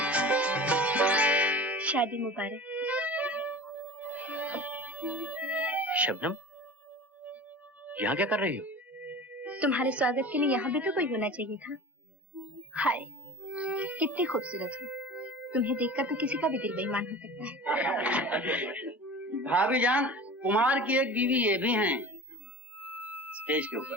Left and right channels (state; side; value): normal; both; correlation 0.36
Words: शादी मुबारक। शबनम, यहाँ क्या कर रही हो? तुम्हारे स्वागत के लिए यहाँ भी तो कोई होना चाहिए था। हाय, कितनी खूबसूरत हो। तुम्हें देखकर तो किसी का भी दिल बेईमान हो सकता है। भाभी जान, कुमार की एक बीवी ये भी हैं। स्टेज के ऊपर।